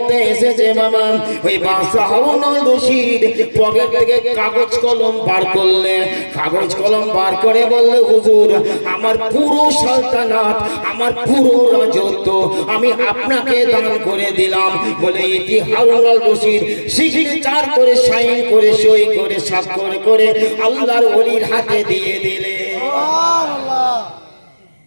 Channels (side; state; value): both; inverted; correlation -1.00